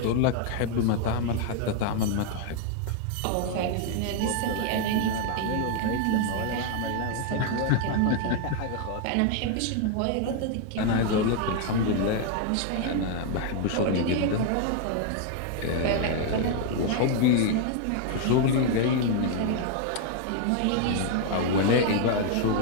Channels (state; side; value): different; both; correlation 0.00